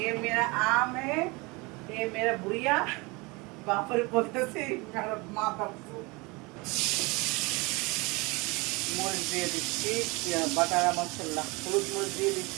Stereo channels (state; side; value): quieter; left; 25.9 dB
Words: মেরা আম है, ये मेरा बुढ़िया বাপরে বলতেছি কারণ মাথা মরিচ দিয়ে দিচ্ছি, বাটারা মশলা, হলুদ মরিচ দিয়ে